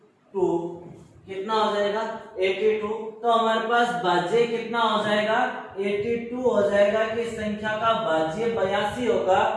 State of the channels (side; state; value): both; identical; correlation 1.00